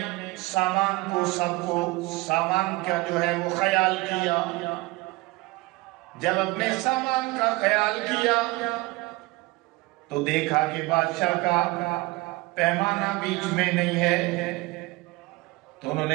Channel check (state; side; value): quieter; left; 21.9 dB